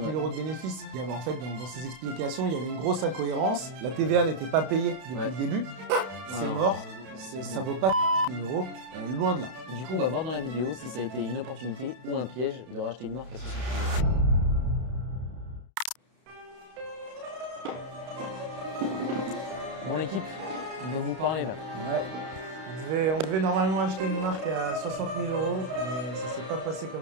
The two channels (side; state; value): left; late; 32 ms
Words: euros de bénéfices. Il y avait en fait dans ses explications, il y avait une grosse incohérence. La TVA n'était pas payée depuis le début. C'est mort. Ça vaut pas 000 euros, loin de là. Du coup, on va voir dans la vidéo si ça a été une opportunité ou un piège de racheter une marque à 60 000 euros. Bon, l'équipe, on va vous parler là. Ouais. On devait normalement acheter une marque à 60 000 euros, mais ça s'est pas passé comme